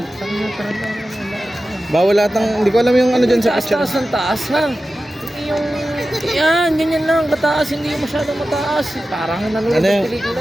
Bawal lahat ng, hindi ko alam yung ano dyan sa picture. taas ng taas ha. Hindi yung, yan, ganyan lang, mataas, hindi yung masyadong mataas. Parang nanonood Ano ng yung, pelikula.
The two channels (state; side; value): normal; both; correlation 0.94